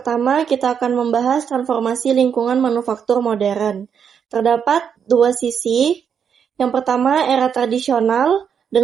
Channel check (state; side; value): quieter; left; 7.4 dB